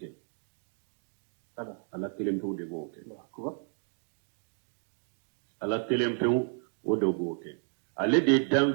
ala kelem pew de boke ala kelem pew o do boke ale de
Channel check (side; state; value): left; silent; 56 dB below the other